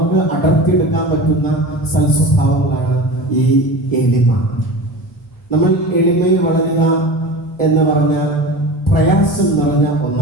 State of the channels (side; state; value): both; normal; correlation 0.32